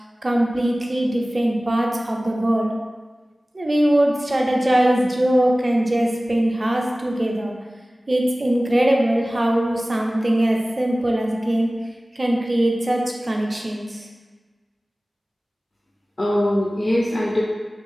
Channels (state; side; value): normal; both; correlation 0.97